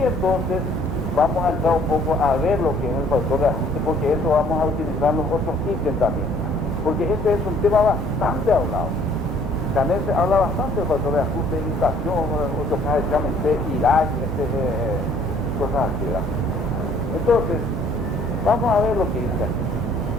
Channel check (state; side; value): normal; both; correlation 0.58